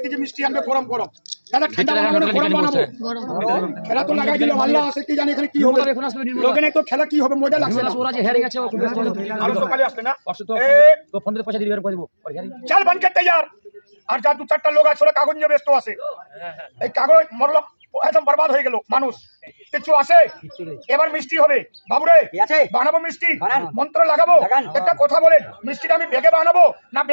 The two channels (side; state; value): both; inverted; correlation -1.00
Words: কেজি মিষ্টি আনবে গরম গরম। দাদা ঠান্ডা বানাবো না গরম বানাবো? খেলা তো লাগাই দিল, আল্লাহ আছে কি জানি এখানে কি হবে। লোকে নাই তো খেলা কি হবে, মজা লাগছে না। আরো সকালে আসলে না, চল বনকে তৈয়ার। আর যা 2-4টা লোক আছে ওরা কাগজ নিয়ে ব্যস্ত আছে। এই কাগজ মরলো, একদম বরবাদ হয়ে গেল মানুষ। কিছু আছে? এবার মিষ্টি হবে। বাবুরে বানাবো মিষ্টি, মন্ত্র লাগাবো। একটা কথা বলেন, মিষ্টিটা আমি বেগে বানাবো না